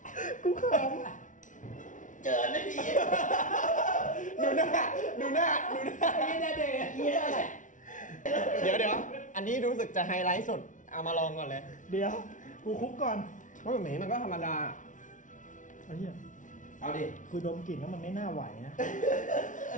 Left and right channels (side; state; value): right; late; 0.37 ms